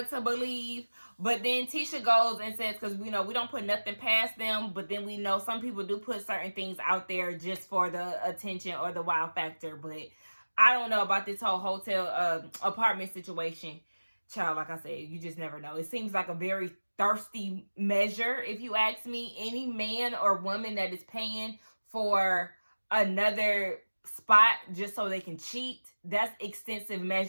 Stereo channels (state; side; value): inverted; both; correlation -1.00